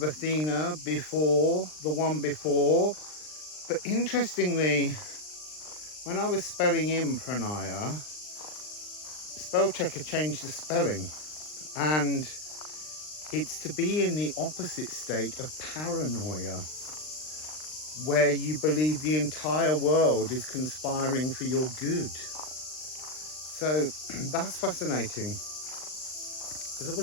Athena before, the one before. But interestingly, when I was spelling in Pronaia, spell checker changed the spelling, and it's to be in the opposite state of paranoia, where you believe the entire world is conspiring for your good. So that's fascinating. As I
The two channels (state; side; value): late; right; 39 ms